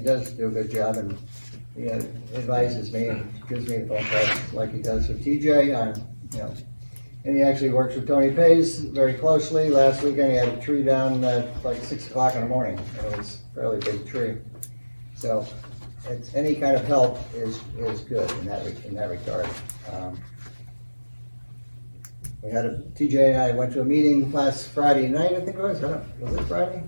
does do a good job, and he advises me and gives me the phone calls like he does with TJ. And he actually works with Tony Pays very closely. Last weekend he had a tree down at like 6 o'clock in the morning. It was a fairly big tree. So it's any kind of help is good in that regard. We had TJ and I went to a meeting last Friday night, I think it was. Was it Friday?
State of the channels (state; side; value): inverted; both; correlation -1.00